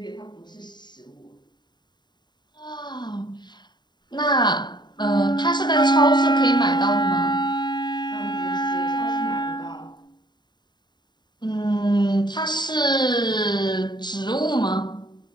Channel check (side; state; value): right; late; 0.21 ms